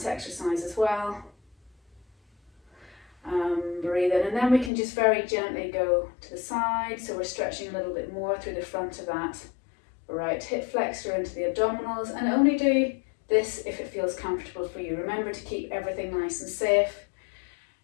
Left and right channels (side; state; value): right; drops out; at 4.7 s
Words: exercise as well. Breathe in, and then we can just very gently go to the side. So we're stretching a little bit more through the front of that right hip flexor into the abdominals, and only do this if it feels comfortable for you. Remember to keep everything nice and safe.